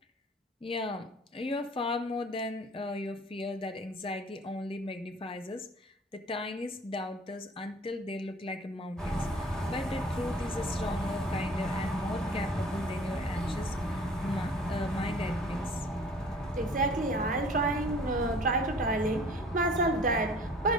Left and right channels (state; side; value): normal; both; correlation 0.49